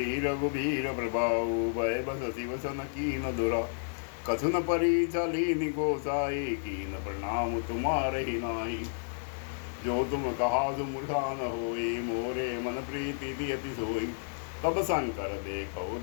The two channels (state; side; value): silent; right; digital silence